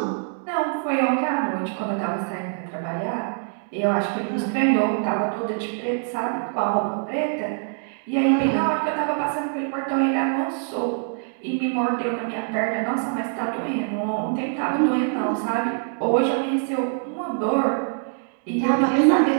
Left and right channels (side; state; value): left; silent; digital silence